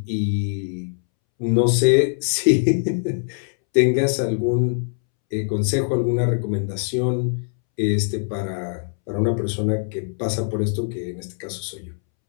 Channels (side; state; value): right; silent; 64 dB below the other